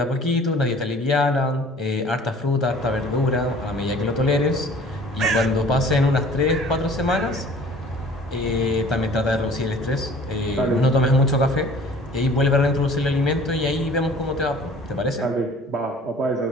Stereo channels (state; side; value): normal; both; correlation 0.49